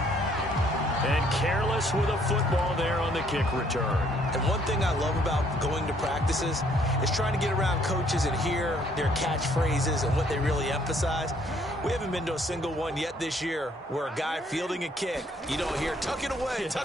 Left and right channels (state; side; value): normal; both; correlation 0.65